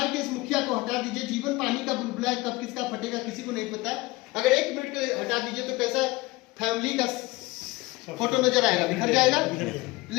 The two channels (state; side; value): quieter; right; 21.1 dB